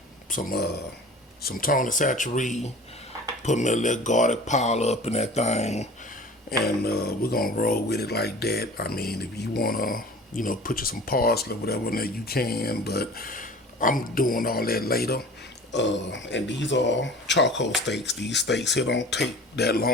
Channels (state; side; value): normal; both; correlation 0.42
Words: some tone and saturate. Put me a little garlic powder up in that thing, and we're gonna roll with it like that. I mean, if you wanna, put you some parsley or whatever in there, you can, but I'm doing all that later. And these are charcoal steaks. These steaks here don't take that